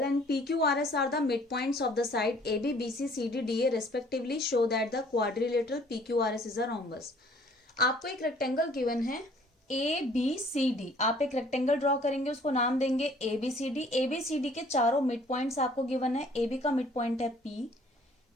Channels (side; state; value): both; normal; correlation 0.57